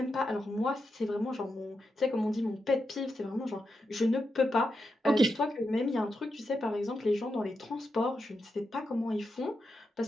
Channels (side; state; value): both; normal; correlation 0.86